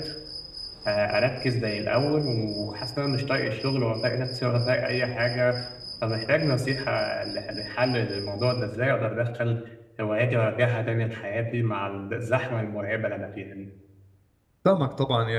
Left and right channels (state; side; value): identical; both; correlation 1.00